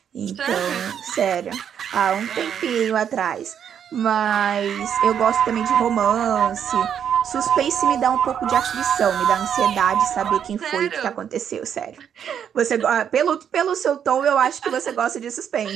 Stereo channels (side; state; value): left; quieter; 8.5 dB